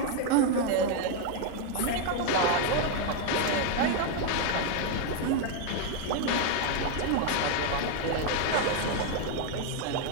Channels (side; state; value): both; different; correlation 0.01